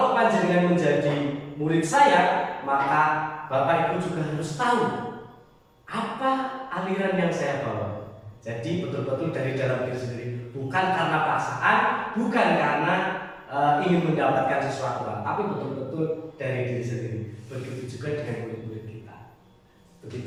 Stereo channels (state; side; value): identical; both; correlation 1.00